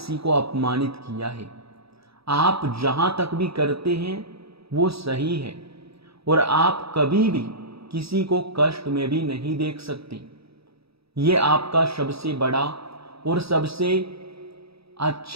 को अपमानित किया है। आप जहां तक भी करते हैं वो सही है, और आप कभी भी किसी को कष्ट में भी नहीं देख सकते। ये आपका सबसे बड़ा और सबसे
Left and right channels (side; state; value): left; late; 0.77 ms